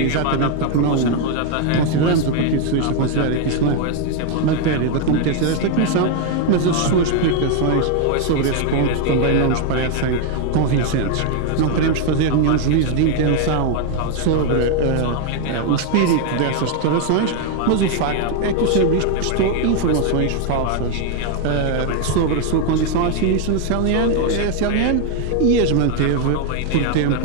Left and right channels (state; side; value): different; both; correlation 0.01